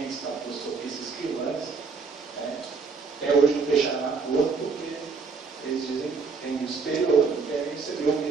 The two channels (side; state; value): left; quieter; 4.8 dB